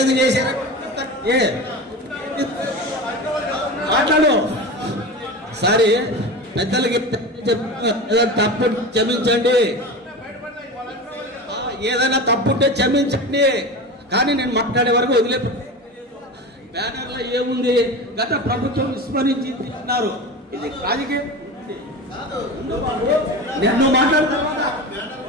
చేశారా మాట్లాడు సరే పెద్దలకి తప్పు క్షమించండి ఏదైనా తప్పుంటే క్షమించండి కానీ నేను మాట్లాడే వరకు వదిలే బ్యానర్ లో ఏముంది గత ప్రభుత్వం విస్మరించి అన్నారు ఇది రాజకీయం నేను మాట్లాడతా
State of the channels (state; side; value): normal; both; correlation 0.28